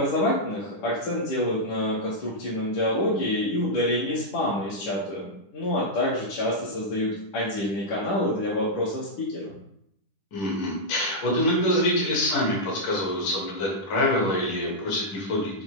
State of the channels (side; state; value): right; late; 10 ms